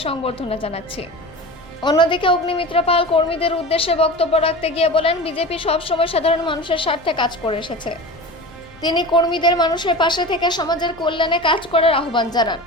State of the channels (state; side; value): noise; left; rumble, 28 dB below the sound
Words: সংবর্ধনা জানাচ্ছি। অন্যদিকে অগ্নিমিত্রা পাল কর্মীদের উদ্দেশ্যে বক্তব্য রাখতে গিয়ে বলেন, বিজেপি সবসময় সাধারণ মানুষের স্বার্থে কাজ করে এসেছে। তিনি কর্মীদের মানুষের পাশে থেকে সমাজের কল্যাণে কাজ করার আহ্বান জানান।